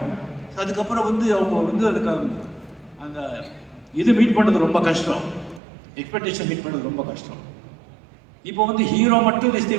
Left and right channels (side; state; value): left; drops out; at 5.6 s